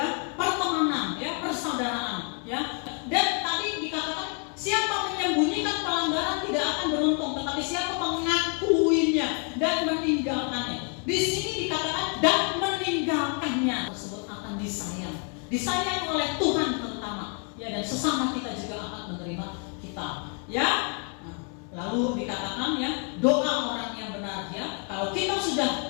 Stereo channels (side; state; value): right; quieter; 39.8 dB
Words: pertemanan, ya, persaudaraan, ya. Dan tadi dikatakan siapa menyembunyikan pelanggaran tidak akan beruntung, tetapi siapa mengakuinya dan meninggalkannya. Di sini dikatakan dan meninggalkannya tersebut akan disayang oleh Tuhan terutama, ya, dan sesama kita juga akan menerima kita, ya. Lalu dikatakan, ya, doa orang yang benar, ya. Kalau kita